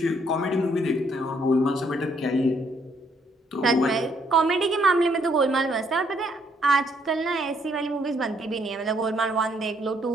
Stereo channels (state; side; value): normal; both; correlation 0.69